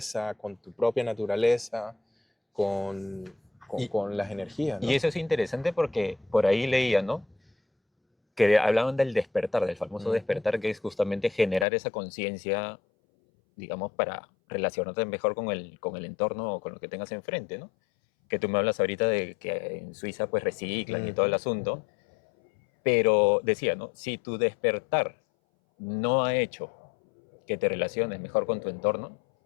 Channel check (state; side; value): drops out; right; at 11.7 s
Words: con tu propia naturaleza, con, Y, con las energías, y ¿no? eso es interesante porque por ahí leía, ¿no? Que hablaban del despertar, del famoso Ujú. despertar, que es justamente generar esa conciencia, digamos, para relacionarte mejor con el entorno o con lo que tengas enfrente, ¿no? Que tú me hablas ahorita de que en Suiza pues reciclan y todo el Ujú, asunto, ujú. pero decía, ¿no? Si tu despertar no ha hecho que te relaciones mejor con tu entorno,